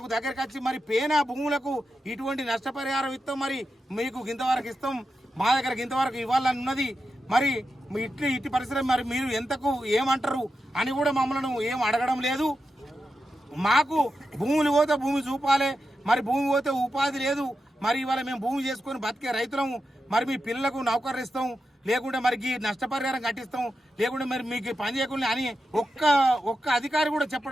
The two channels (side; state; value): both; normal; correlation 0.89